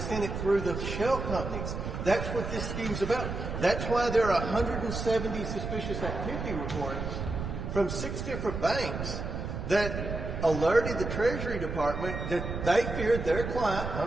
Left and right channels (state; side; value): noise; right; rumble, 5 dB below the sound